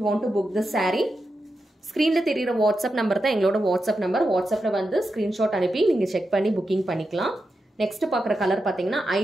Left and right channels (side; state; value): both; normal; correlation 0.88